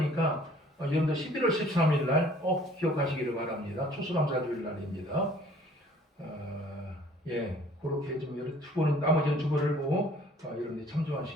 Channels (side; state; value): both; normal; correlation 0.55